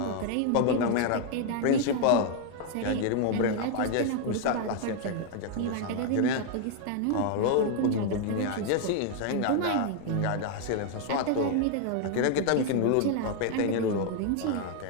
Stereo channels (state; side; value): different; both; correlation 0.00